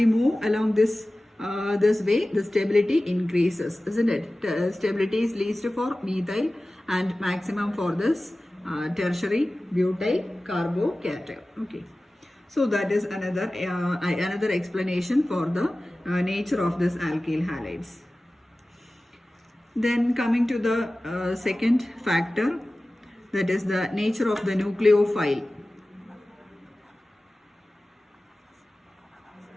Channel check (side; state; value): both; normal; correlation 0.97